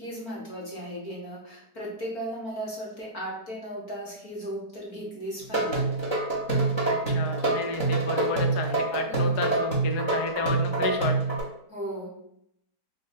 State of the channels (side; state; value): right; late; 4.4 ms